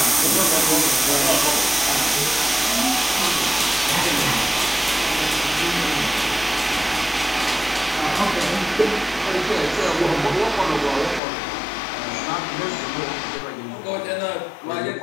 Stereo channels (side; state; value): right; drops out; at 11.2 s